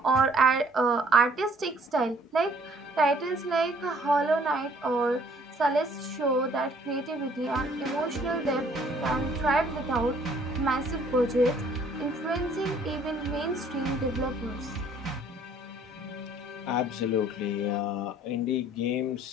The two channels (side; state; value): both; normal; correlation 0.59